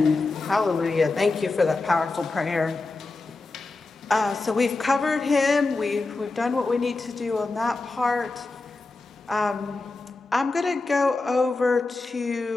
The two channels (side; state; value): right; quieter; 3.5 dB